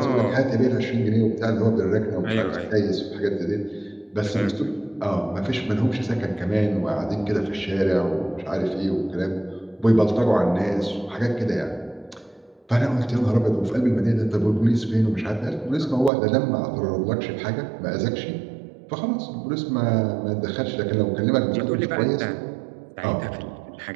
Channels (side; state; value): left; drops out; at 16.1 s